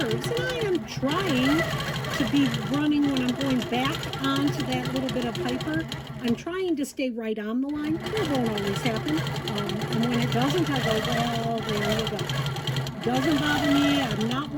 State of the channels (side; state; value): both; identical; correlation 1.00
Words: and I am trying to be running when I'm going back onto that little bit of hyper. I'm trying to stay right on the line. It won't always happen. And when it doesn't, I go, well, there you go. Doesn't bother me. I'm not